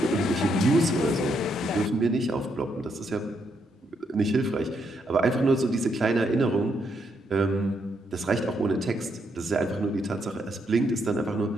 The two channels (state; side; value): normal; both; correlation 0.77